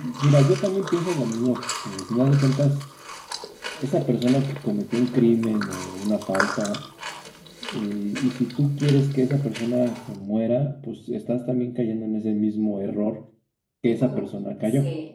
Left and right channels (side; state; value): both; identical; correlation 1.00